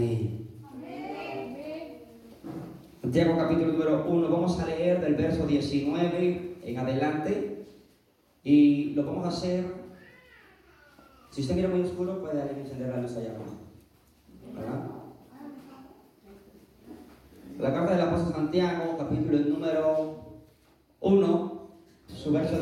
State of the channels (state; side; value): identical; both; correlation 1.00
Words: Santiago capítulo número 1. Vamos a leer del verso 19 en adelante. Y lo vamos a hacer. Si usted mira muy oscuro, puede alguien encender la luz allá abajo. ¿Verdad? La carta del apóstol Santiago, capítulo número 1, su verso